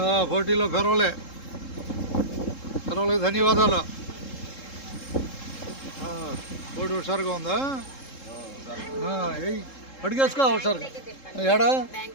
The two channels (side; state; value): right; late; 3.7 ms